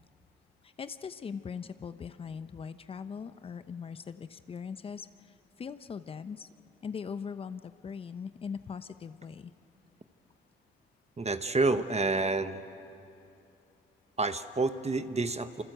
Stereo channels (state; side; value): normal; both; correlation 0.50